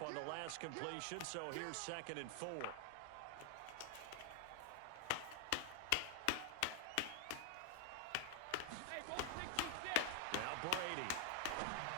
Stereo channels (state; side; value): different; both; correlation 0.00